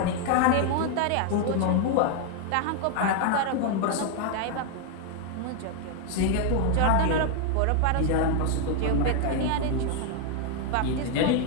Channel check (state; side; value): different; both; correlation 0.00